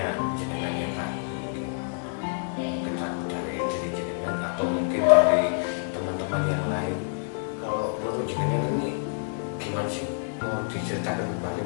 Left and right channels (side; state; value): right; silent; digital silence